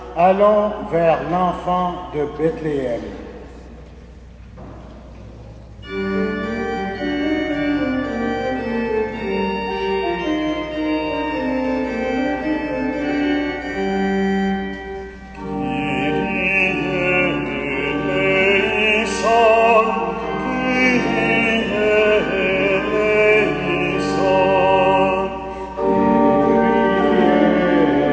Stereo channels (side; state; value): both; identical; correlation 1.00